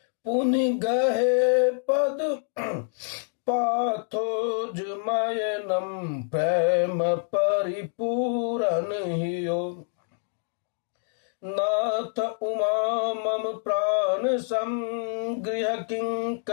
पुनि गहे पद पाथोज मयनम प्रेम परिपूरन हियो नाथ उमा मम प्राण संगृह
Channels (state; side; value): silent; right; digital silence